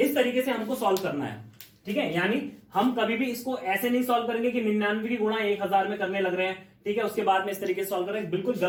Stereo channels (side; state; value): both; identical; correlation 1.00